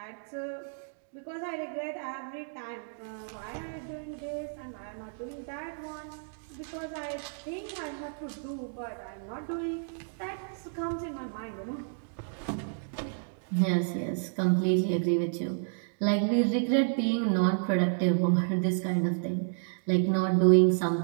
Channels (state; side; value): silent; left; digital silence